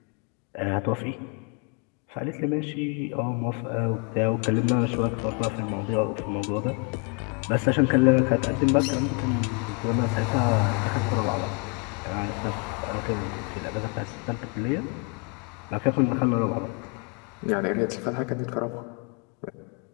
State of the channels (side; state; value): right; quieter; 33.4 dB